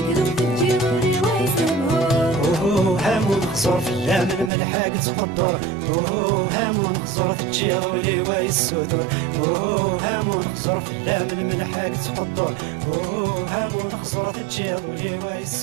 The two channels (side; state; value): left; drops out; at 4.5 s